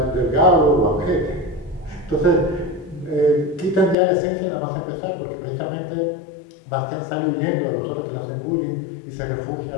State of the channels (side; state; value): right; drops out; at 4.0 s